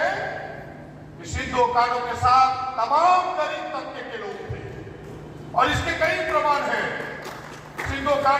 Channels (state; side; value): identical; both; correlation 1.00